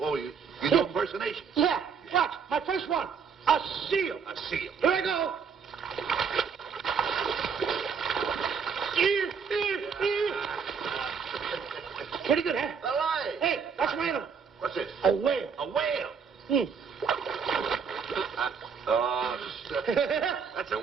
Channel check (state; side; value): quieter; left; 6.2 dB